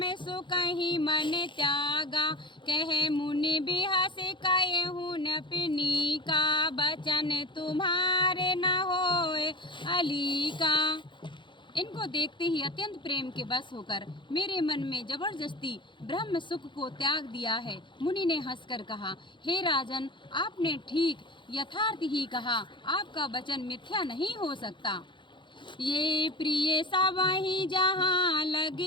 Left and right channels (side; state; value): right; late; 0.23 ms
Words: सुकहि मन त्यागा। कहे मुनि बिहस कहूँ न पिनी का, बचन तुम्हारे न होए अली का। इनको देखते ही अत्यंत प्रेम के बस होकर मेरे मन में जबरदस्ती ब्रह्म सुख को त्याग दिया है। मुनि ने हंसकर कहा, हे राजन, आपने ठीक यथार्थ ही कहा, आपका वचन मिथ्या नहीं हो सकता। ये प्रिय सवहि जहाँ